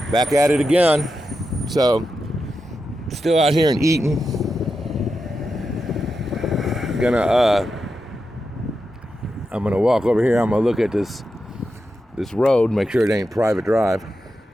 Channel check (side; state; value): both; normal; correlation 0.89